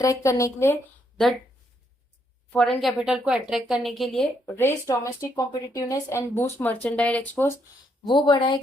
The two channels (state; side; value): normal; both; correlation 0.74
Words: करने के लिए, द फॉरेन कैपिटल को अट्रैक्ट करने के लिए। Raise domestic competitiveness and boost merchandise export, वो